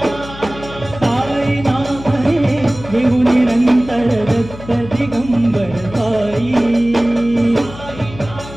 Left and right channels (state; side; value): noise; left; hum, 15 dB below the sound